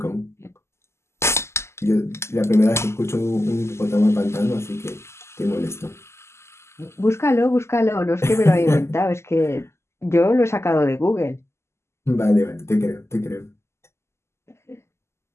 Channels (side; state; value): right; late; 0.13 ms